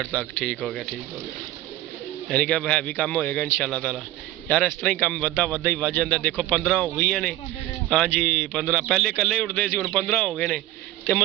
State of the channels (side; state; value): left; quieter; 15.4 dB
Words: तक। ठीक हो गया यानी कि हैवी काम होएगा इंशाल्लाह ताला। यार इस तरह ही काम वधा ही वध जाता। देखो 15 हो गई ने हाँ जी 15 पहले कल्ले उड़ते सी, हुण 15 हो गए ने तो